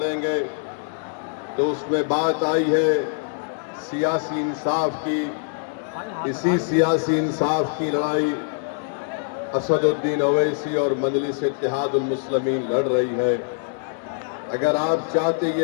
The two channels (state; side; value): silent; right; digital silence